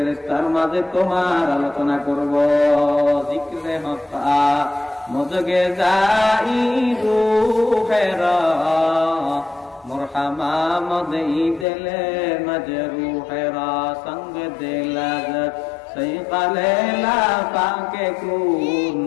মাঝে তোমার আলোচনা করব। জিক্রে হতা মজগে যাই রূহেরা মুরহামা মদই দিলে মজরুহেরা সঙ্গ দিলাজ সৈকালে লাফাকে কুন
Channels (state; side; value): drops out; right; at 11.7 s